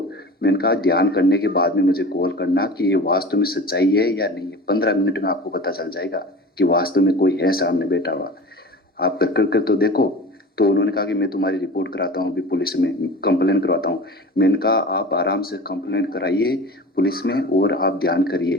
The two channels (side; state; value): both; normal; correlation 0.36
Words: मैंने कहा ध्यान करने के बाद में मुझे कॉल करना कि ये वास्तव में सच्चाई है या नहीं है। 15 मिनट में आपको पता चल जाएगा कि वास्तव में कोई है सामने बैठा हुआ। आप कर तो देखो। तो उन्होंने कहा कि मैं तुम्हारी रिपोर्ट कराता हूँ, अभी पुलिस में कंप्लेन करवाता हूँ। मैंने कहा आप आराम से कंप्लेन कराइए पुलिस में और आप ध्यान करिए।